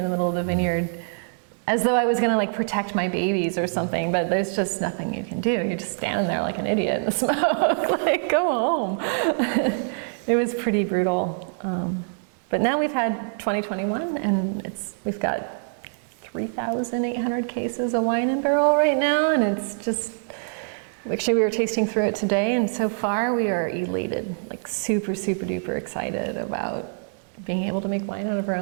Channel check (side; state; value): left; silent; 62 dB below the other